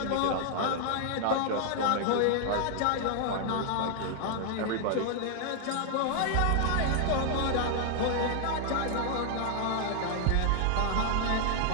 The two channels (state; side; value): different; both; correlation 0.00